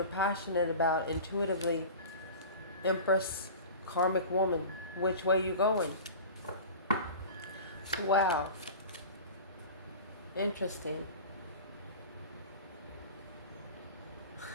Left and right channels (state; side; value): inverted; both; correlation -0.36